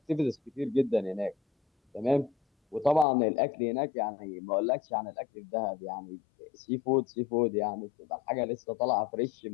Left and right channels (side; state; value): right; drops out; at 3.1 s